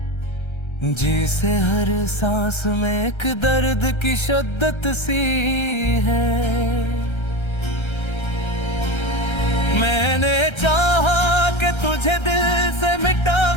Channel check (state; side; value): late; right; 1.3 ms